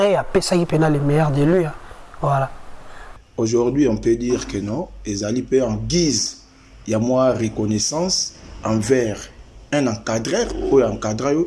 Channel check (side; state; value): both; identical; correlation 1.00